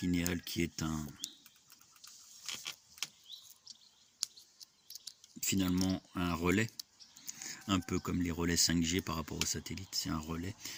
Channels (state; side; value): identical; both; correlation 1.00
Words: qui est finalement un relais, un peu comme les relais 5G par rapport au satellite, c'est un relais.